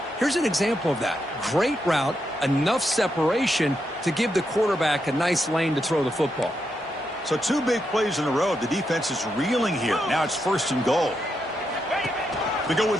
Here's an example of that. Great route, enough separation to give the quarterback a nice lane to throw the football. So 2 big plays in a row. The defense is reeling here. Now it's 1st and goal. They go with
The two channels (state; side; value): normal; both; correlation 0.83